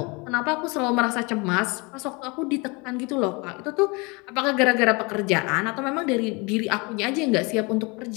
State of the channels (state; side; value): quieter; right; 28.1 dB